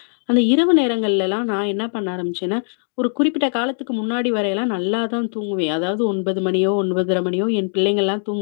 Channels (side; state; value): right; silent; digital silence